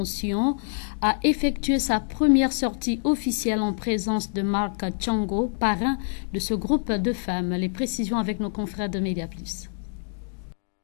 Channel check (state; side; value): silent; right; digital silence